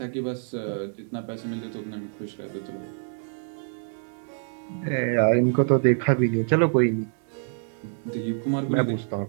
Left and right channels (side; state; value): left; silent; 61 dB below the other